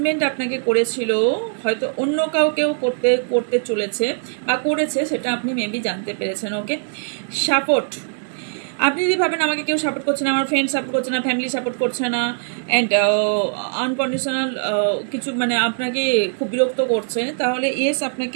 আপনাকে করেছিল, হয়তো অন্য কাউকেও করতে চলেছে বা করেছে, সেটা আপনি মেবি জানতে পেরেছেন। ওকে, সাপোর্ট, আপনি যদি ভাবেন আমাকে কেউ সাপোর্ট করছে না, আমার ফ্রেন্ড সাপোর্ট করছে না, ফ্যামিলি সাপোর্ট করছে না, অ্যান্ড আনকন্ডিশনাল কিছু মানে আপনাকে খুব বিরক্ত করছে, তাহলে ইয়েস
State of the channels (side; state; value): left; silent; digital silence